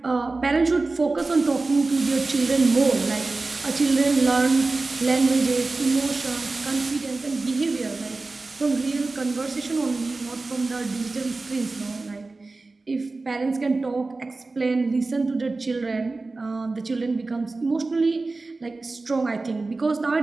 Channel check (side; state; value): left; quieter; 3.5 dB